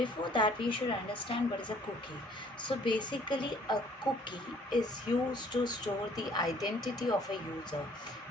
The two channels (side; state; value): both; normal; correlation 0.58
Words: that we should understand what is a cookie. So basically a cookie is used to store the identity of a user,